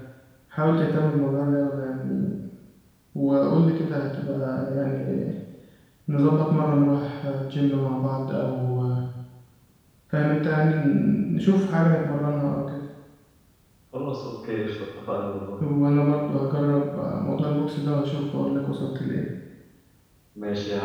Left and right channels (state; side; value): identical; both; correlation 1.00